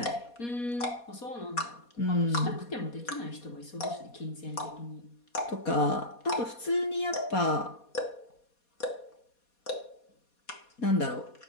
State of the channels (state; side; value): late; right; 4.2 ms